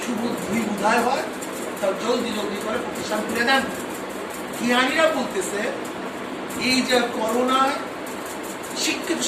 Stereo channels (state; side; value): identical; both; correlation 1.00